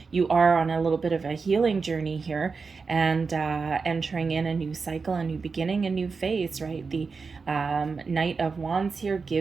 You are on a little bit of a healing journey here, and entering in a new cycle, a new beginning, a new phase, right? The Knight of Wands here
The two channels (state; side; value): quieter; left; 4.8 dB